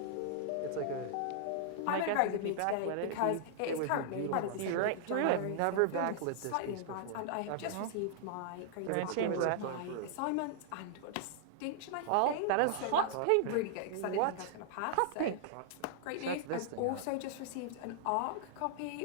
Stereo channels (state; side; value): different; both; correlation -0.01